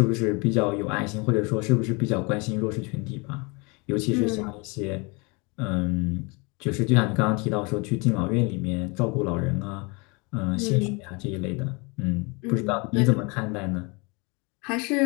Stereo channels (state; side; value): quieter; right; 29.4 dB